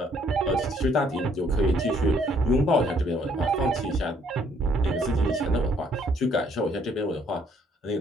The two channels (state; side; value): normal; both; correlation 0.65